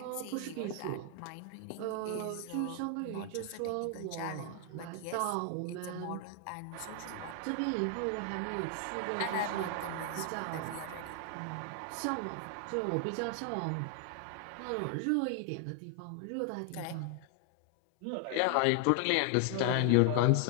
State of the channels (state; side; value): different; both; correlation 0.00